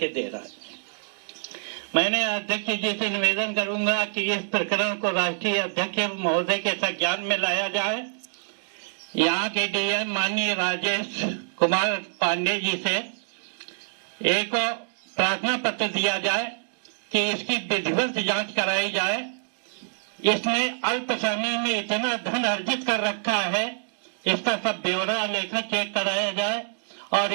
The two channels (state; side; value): silent; left; digital silence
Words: दे रहा है। मैंने अध्यक्ष जी से निवेदन करूंगा कि इस प्रकरण को राष्ट्रीय अध्यक्ष महोदय के संज्ञान में लाया जाए। यहाँ के डीएम माननीय राजेश कुमार पांडे जी से एक प्रार्थना पत्र दिया जाए कि इसकी विधिवत जांच कराई जाए। इसने अल्प समय में इतना धन अर्जित कर रखा है, इसका सब ब्यौरा लेखा चेक कराया जाए और